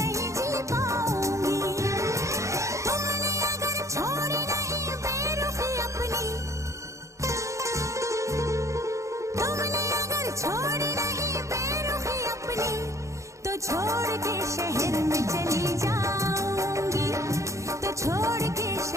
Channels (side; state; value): left; late; 0.15 ms